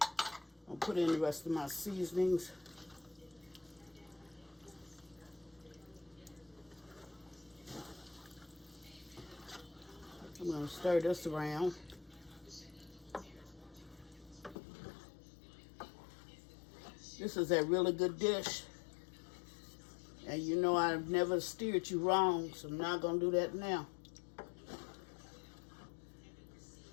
I'll put in the rest of my seasonings. I'm going to stir this around. This is a really good dish. And you know I've never steered you wrong, so I'm not going to do that now.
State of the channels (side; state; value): right; drops out; at 14.6 s